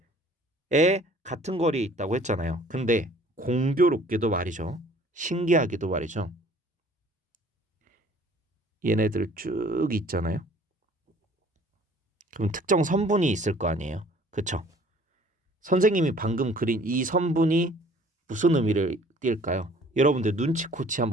같은 거리에 있다고 했잖아요. 근데 공교롭게도 말이죠. 신기하게도 말이죠. 얘네들 쭉 있잖아요. 그럼 특정 선분이 있을 거 아니에요. 그쵸? 선생님이 방금 그린 이 선분이 무슨 의미를 띌까요? 여러분들 눈치코치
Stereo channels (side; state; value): both; normal; correlation 0.54